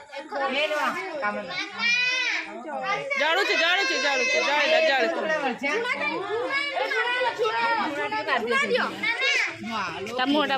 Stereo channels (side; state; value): both; identical; correlation 1.00